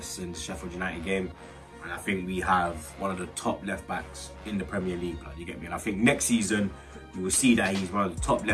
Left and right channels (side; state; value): both; identical; correlation 1.00